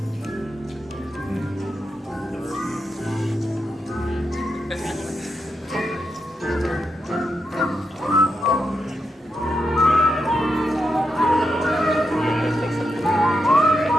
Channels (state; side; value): normal; both; correlation 0.85